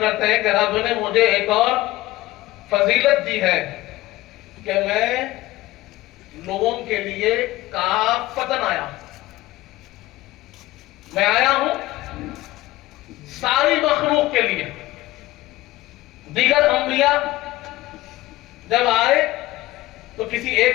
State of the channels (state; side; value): quieter; right; 17.7 dB